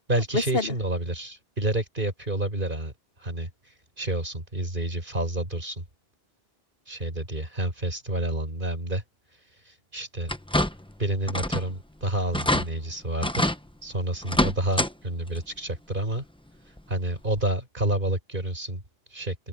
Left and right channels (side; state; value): both; normal; correlation 0.13